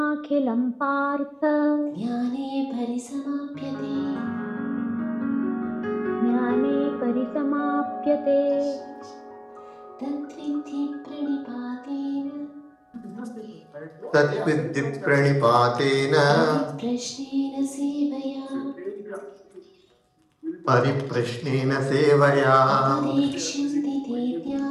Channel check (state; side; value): identical; both; correlation 1.00